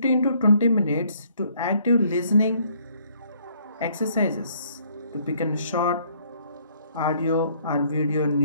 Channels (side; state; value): both; inverted; correlation -0.64